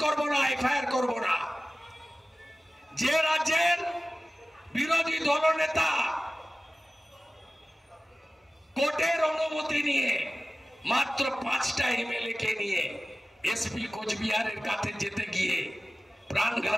করব না, এফআইআর করব না। যে রাজ্যের বিরোধী দলনেতা কোর্টের অনুমতি নিয়ে মাত্র 5টা এমএলএ কে নিয়ে এসপি কোচবিহারের কাছে যেতে গিয়ে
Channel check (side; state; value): both; normal; correlation 0.96